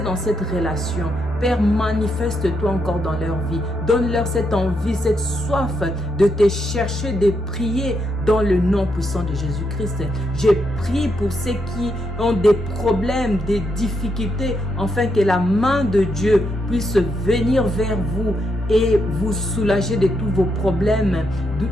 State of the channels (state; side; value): normal; both; correlation 0.80